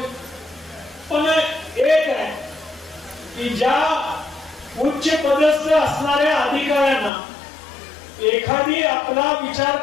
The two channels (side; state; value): right; drops out; at 7.1 s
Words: पण एक आहे की ज्या उच्च पदस्थ असणाऱ्या अधिकाऱ्यांना एखादी आपला विचार